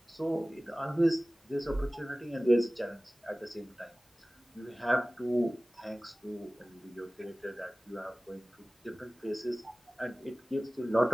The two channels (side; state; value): both; normal; correlation 0.98